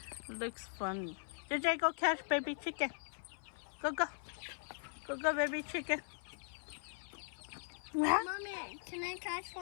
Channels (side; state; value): right; silent; 51 dB below the other